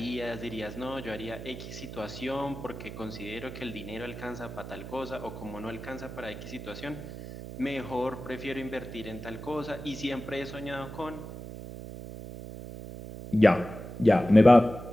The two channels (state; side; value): noise; right; hum, 10 dB below the sound